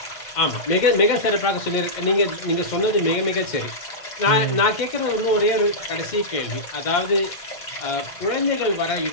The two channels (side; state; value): right; late; 1.6 ms